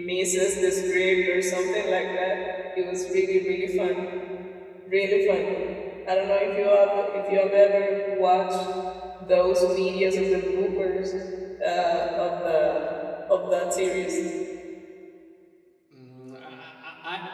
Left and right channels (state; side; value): identical; both; correlation 1.00